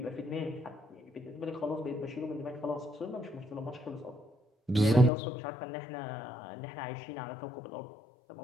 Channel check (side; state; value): right; drops out; at 5.1 s